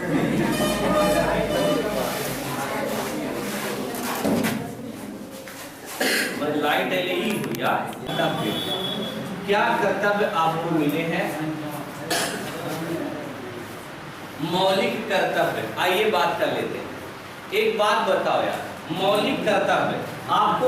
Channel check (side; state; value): both; identical; correlation 1.00